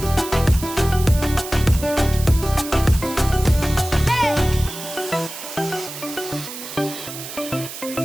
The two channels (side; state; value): right; noise; hiss, 11 dB below the sound